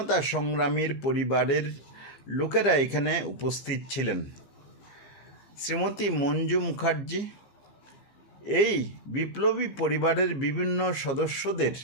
সংগ্রামীর পরিবারের লোকেরা এখানে উপস্থিত ছিলেন। শ্রীমতী মঞ্জু মুখার্জি এই বিপ্লবী পরিবারের বিভিন্ন সদস্যদের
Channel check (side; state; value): right; late; 15 ms